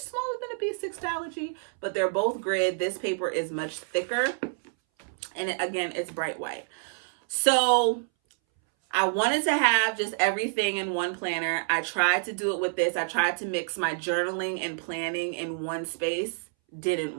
than a B6 Astrology, but they're both grid. This paper is much thicker. And again, it's bright white. So I wanted to have just everything in one planner. I tried to do it with this. I tried to mix my journaling and planning in one space. Didn't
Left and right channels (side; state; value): left; silent; 59 dB below the other